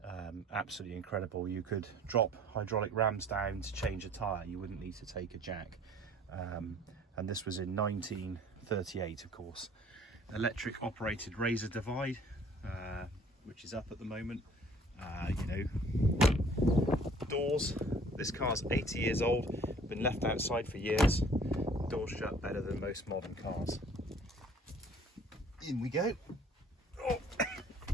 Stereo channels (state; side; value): normal; both; correlation 0.53